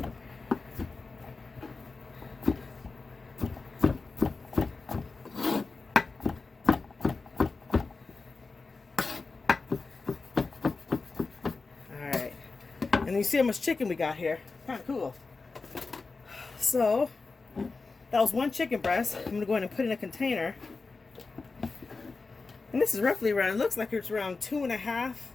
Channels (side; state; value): right; quieter; 4.1 dB